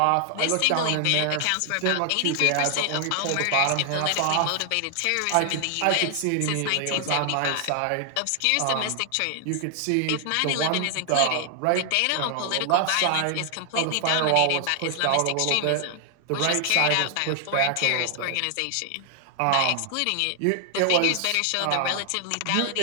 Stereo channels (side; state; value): both; different; correlation 0.00